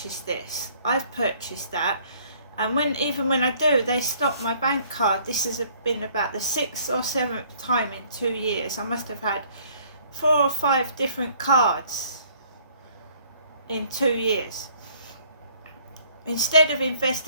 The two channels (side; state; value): both; inverted; correlation -0.59